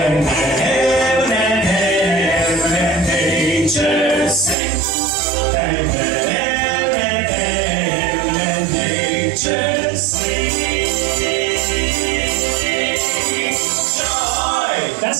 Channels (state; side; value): drops out; left; at 4.5 s